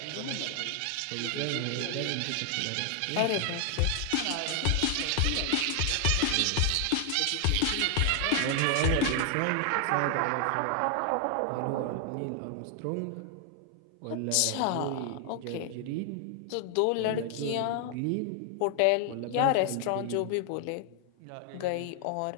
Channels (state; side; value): different; both; correlation 0.00